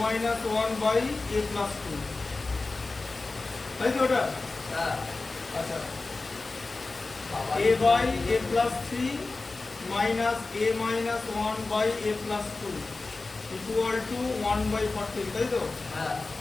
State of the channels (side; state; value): right; quieter; 3.5 dB